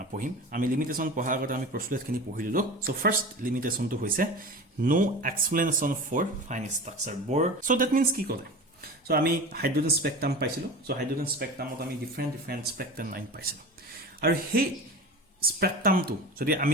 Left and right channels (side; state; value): both; normal; correlation 0.32